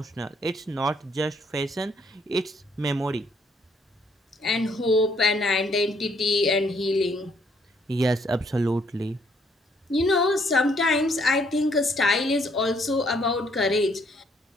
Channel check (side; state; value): both; normal; correlation 0.67